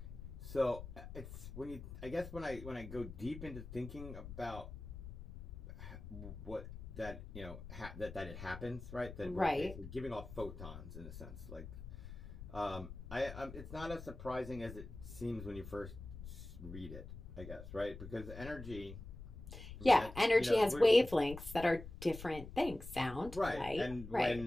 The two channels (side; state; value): left; noise; rumble, 11 dB below the sound